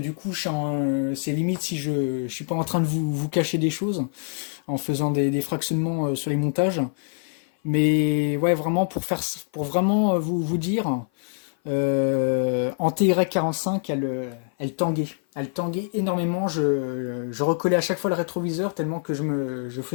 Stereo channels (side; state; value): right; silent; 56 dB below the other